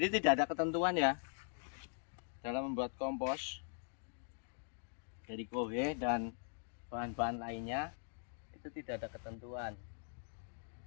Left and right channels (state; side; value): silent; right; digital silence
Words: tidak ada ketentuan ya dalam membuat kompos dari kohe dan bahan-bahan lainnya, itu tidak ada ketentuan.